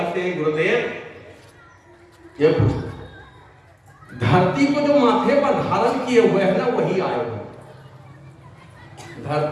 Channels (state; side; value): identical; both; correlation 1.00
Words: हैं गुरुदेव, ये पूछते धरती को जो माथे पर धारण किए हुए हैं ना वही आए हुए,